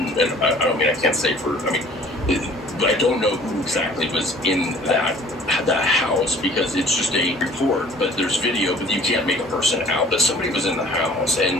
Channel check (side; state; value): both; normal; correlation 0.51